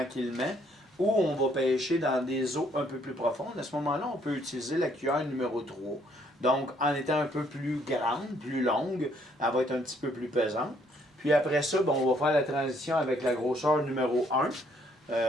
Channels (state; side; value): normal; both; correlation 0.67